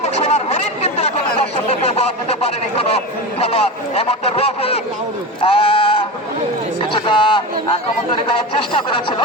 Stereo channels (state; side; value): normal; both; correlation 0.25